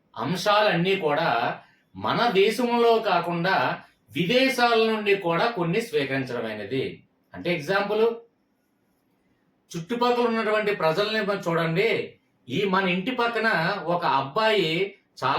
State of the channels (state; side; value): identical; both; correlation 1.00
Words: అంశాలన్నీ కూడా మన దేశంలో కాకుండా విదేశాల నుండి కూడా కొన్ని స్వీకరించడమైనది. అంటే ఎగ్జాంపుల్, చుట్టుపక్కల ఉన్నటువంటి ప్రజల్ని చూడండి. మన ఇంటి పక్కన ఒక అబ్బాయి